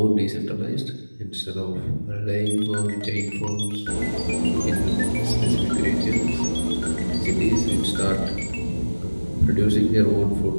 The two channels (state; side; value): inverted; both; correlation -1.00